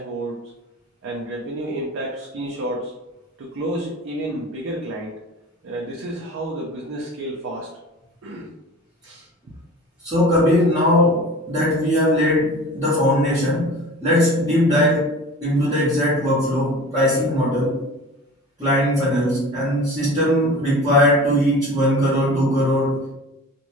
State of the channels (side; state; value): both; normal; correlation 0.39